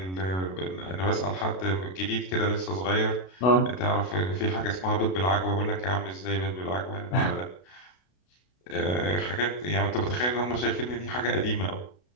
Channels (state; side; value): late; right; 32 ms